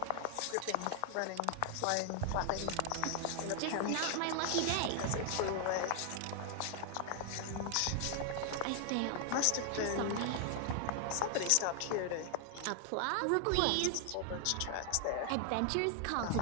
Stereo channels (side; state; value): both; different; correlation 0.00